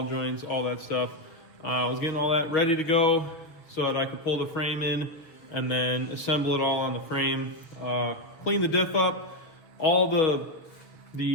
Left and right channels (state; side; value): late; right; 6.6 ms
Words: joints, all that stuff. I was getting all that ready to go so that I could pull the frame in and then assemble it all on the frame. Clean the diff up, all